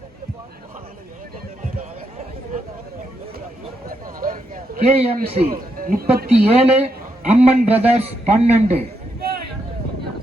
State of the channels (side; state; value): both; normal; correlation 0.80